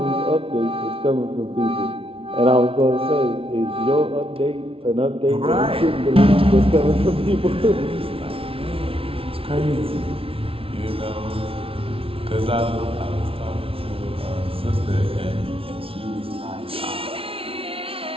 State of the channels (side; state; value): left; late; 0.26 ms